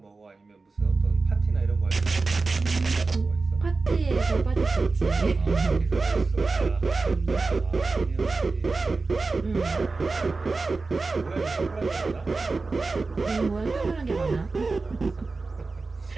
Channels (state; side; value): quieter; left; 3.8 dB